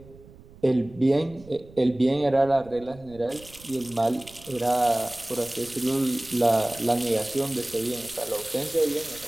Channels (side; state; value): right; noise; rumble, 21 dB below the sound